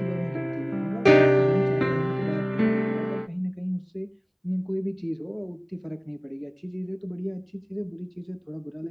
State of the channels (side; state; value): both; identical; correlation 1.00